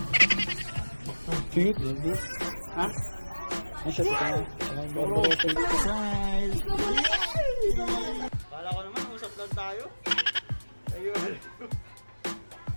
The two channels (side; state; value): both; inverted; correlation -1.00